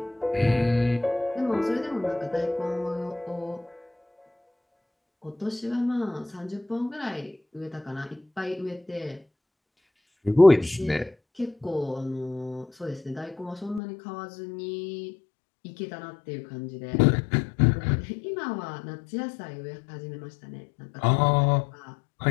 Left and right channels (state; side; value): drops out; right; at 13.8 s